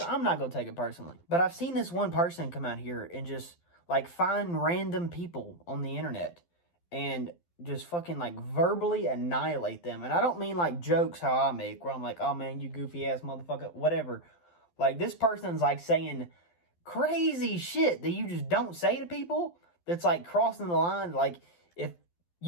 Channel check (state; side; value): late; right; 12 ms